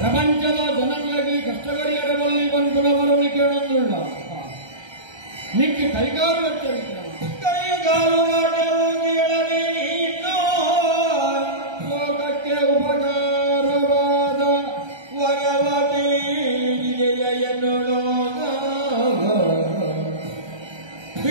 ಜನಗಳಿಗೆ ಕಷ್ಟಗರಿಯರಬಲ್ಲಿ ಬಂದವರನ್ನು ಕೇಳೊಂದುಳ್ಳ ನಿಕ್ಕೆ ಕೈಗಾಲು ವೆಚ್ಚ ವಿಕ್ರಮ ಕೈಗಾಲು ಲೋಕಕ್ಕೆ ಉಪಕಾರವಾದ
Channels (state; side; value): late; left; 1.3 ms